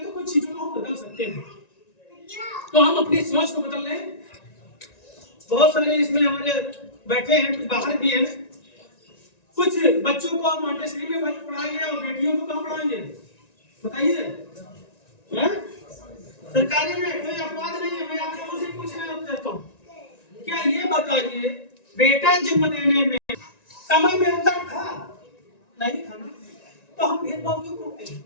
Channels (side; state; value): right; late; 1.9 ms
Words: तो कुछ चीजों को हम बदल सकते हैं, तो हम अपनी सोच को बदल लें। बहुत सारे इसमें हमारे बैठे हैं, कुछ बाहर भी हैं, कुछ बच्चों को मॉन्टेसरी में पढ़ाएंगे और बेटियों को कहाँ पढ़ाएंगे बताइए? हैं? सरकारी में कोई अपवाद नहीं है। मैं आप लोगों से पूछना चाहता हूँ, क्या ये बताइए बेटा जन्म देने में समय में अंतर था? नहीं था ना। तो हम भेदभाव क्यों करते हैं?